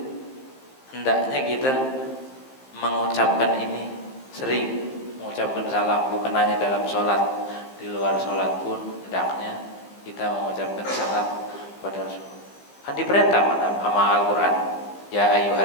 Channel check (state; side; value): late; right; 15 ms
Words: Hendaknya kita mengucapkan ini sering, mengucapkan salam, bukan hanya dalam sholat, di luar sholat pun hendaknya kita mengucapkan salam kepada Rasulullah. Kan diperintah sama Al-Quran, ya